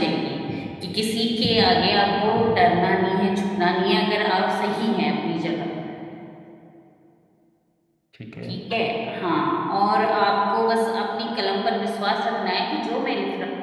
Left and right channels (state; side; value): identical; both; correlation 1.00